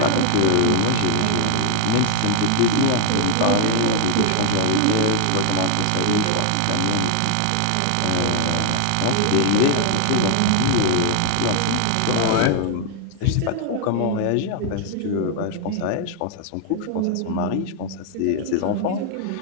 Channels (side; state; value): both; different; correlation 0.00